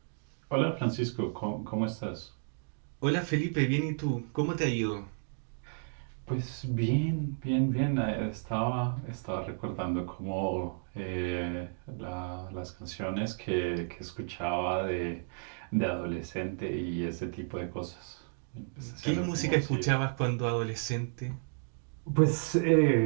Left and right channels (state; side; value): silent; left; digital silence